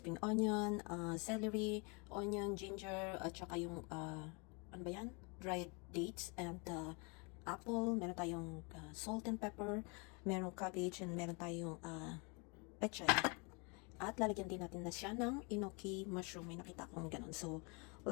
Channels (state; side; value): quieter; right; 32.0 dB